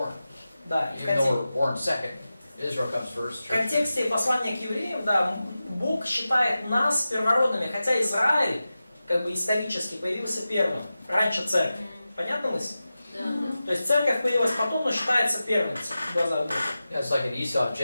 Да, и Even though we're born second, Israel comes first. в контексте послания к евреям, да, Бог считает нас первородными, хотя Израиль, как бы исторически, появился первым, раньше церкви. Понятно мысль? Да. То есть церковь появилась потом, но считается первенцем в глазах Бога. Yeah, it's like an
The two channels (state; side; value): inverted; both; correlation -0.94